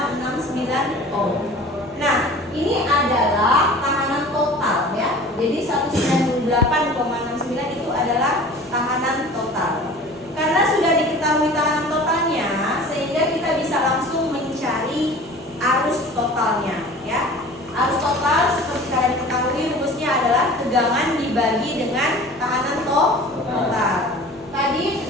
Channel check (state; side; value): normal; both; correlation 0.42